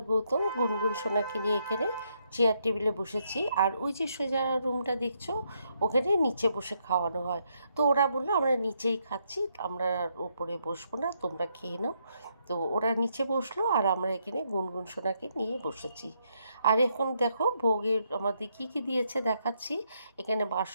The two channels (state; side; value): inverted; both; correlation -0.76